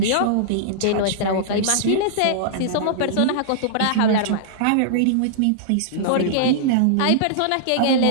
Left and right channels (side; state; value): both; different; correlation -0.02